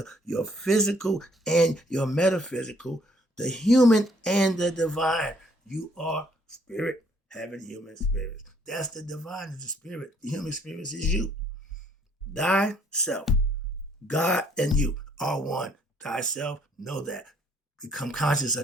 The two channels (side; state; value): both; normal; correlation 0.64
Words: your physical and your metaphysical, the human and the divine. You are spirit having human spirits. That's the divine is the spirit. The human spirit is you. Thyself. God and you are one. Thyself, know that. Become conscious